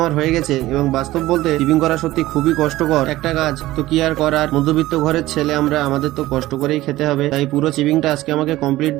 হয়ে গেছে এবং বাস্তব বলতে চিপিং করা সত্যি খুবই কষ্টকর একটা কাজ। তো কি আর করার, মধ্যবিত্ত ঘরের ছেলে আমরা, আমাদের তো কষ্ট করেই খেতে হবে, তাই পুরো চিপিংটা আজকে আমাকে কমপ্লিট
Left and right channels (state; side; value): quieter; left; 16.7 dB